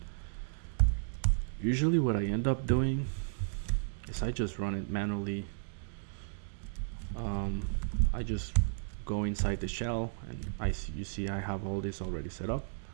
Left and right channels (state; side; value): silent; left; digital silence